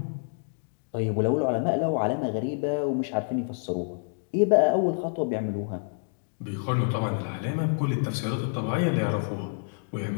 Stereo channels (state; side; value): silent; right; digital silence